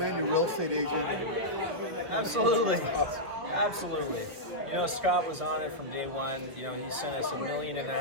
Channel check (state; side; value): late; left; 1.5 ms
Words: a real estate agent? Absolutely. Absolutely. You know, Scott was on it from day one. You know, he sent us 1.5 million